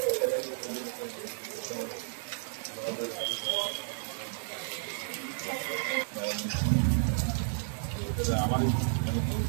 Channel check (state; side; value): silent; left; 56 dB below the other